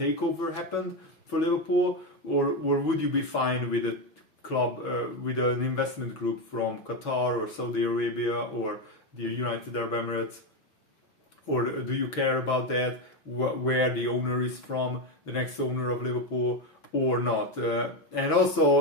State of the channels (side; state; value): right; late; 6.2 ms